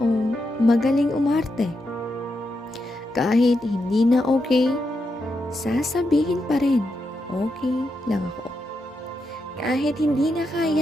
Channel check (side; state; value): both; normal; correlation 0.84